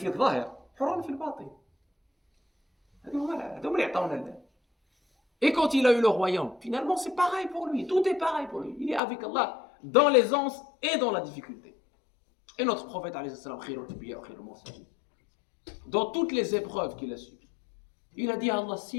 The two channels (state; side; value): drops out; right; at 9.0 s